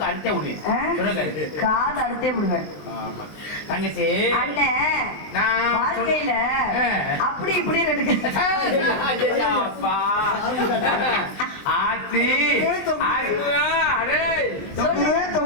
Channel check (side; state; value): right; late; 19 ms